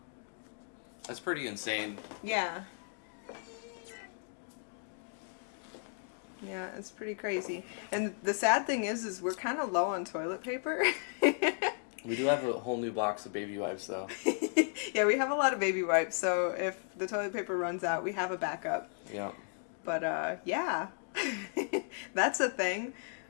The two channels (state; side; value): silent; right; 55 dB below the other